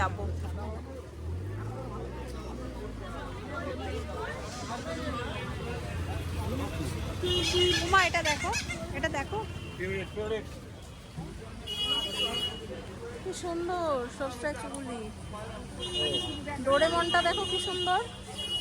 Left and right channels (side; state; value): both; identical; correlation 1.00